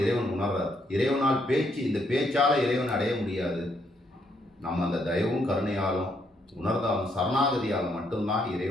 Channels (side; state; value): both; normal; correlation 0.73